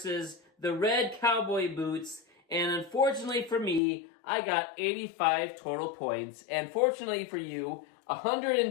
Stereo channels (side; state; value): right; drops out; at 3.8 s